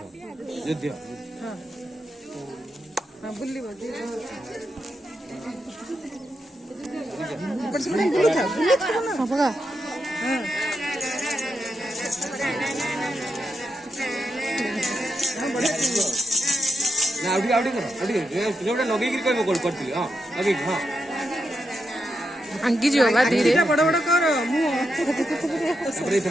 युद्ध ହଁ ବୁଲିବ ବୁଲୁଥା ନା ପକା ना आउडी आउडी करो जोटा लगे कि कहबो करथि हां लगे हां अंगी जियो बा धीरे बड़ बड़ कर मु अरे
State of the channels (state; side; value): normal; both; correlation 0.84